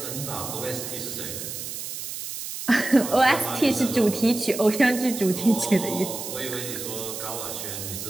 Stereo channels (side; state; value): right; noise; hiss, 7 dB below the sound